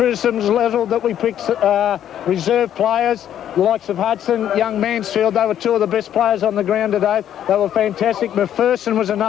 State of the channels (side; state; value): right; quieter; 10.5 dB